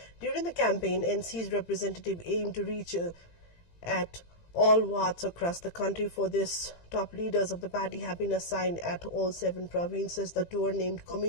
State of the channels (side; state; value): right; late; 18 ms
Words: During the campaign, NC's representative aimed to reach at all wards across the country. For this, top leaders of the party have been assigned at all 7 provinces. The tour, named